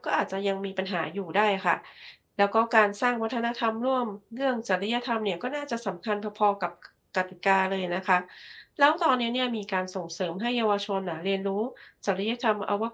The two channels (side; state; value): both; identical; correlation 1.00